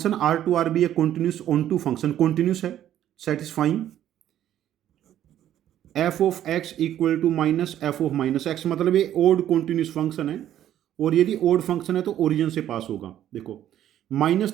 R to R be a continuous onto function continuous है, satisfying f of x equal to minus f of minus x, मतलब ये ओड कॉन्टिन्यूस फंक्शन है। और यदि ओड फंक्शन है तो origin से पास होगा। देखो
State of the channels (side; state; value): left; quieter; 11.6 dB